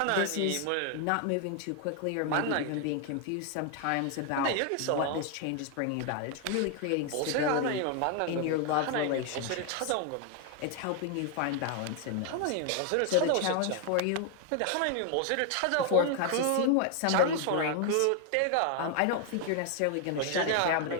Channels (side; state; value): both; different; correlation 0.00